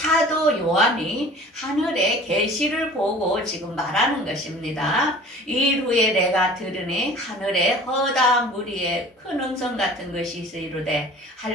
요한이 하늘의 계시를 보고 지금 말하는 것입니다. 일 후에 내가 들으니 하늘에 허다한 무리에 큰 음성 같은 것이 있으리로되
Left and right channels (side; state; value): both; normal; correlation 0.45